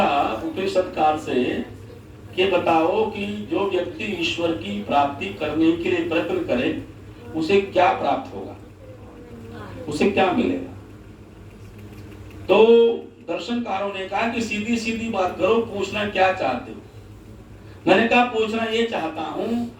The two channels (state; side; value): identical; both; correlation 1.00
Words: उपनिषदकार से कि बताओ कि जो व्यक्ति ईश्वर की प्राप्ति करने के लिए प्रयत्न करे, उसे क्या प्राप्त होगा? उसे क्या मिलेगा? तो दर्शनकारों ने कहा कि सीधी सीधी बात करो, पूछना क्या चाहते हो? मैंने कहा पूछना ये चाहता हूं,